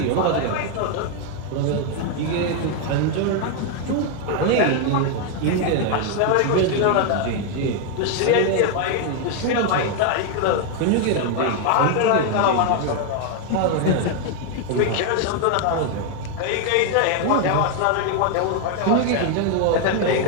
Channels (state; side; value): different; both; correlation 0.01